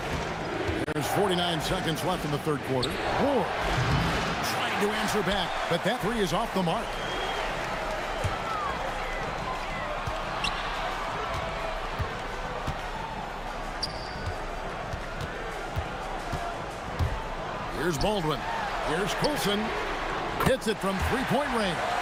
There's 49 seconds left in the third quarter. Ward trying to answer back, but that 3 is off the mark. Here's Baldwin. Here's Coulson. Hits it from three-point range.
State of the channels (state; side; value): identical; both; correlation 1.00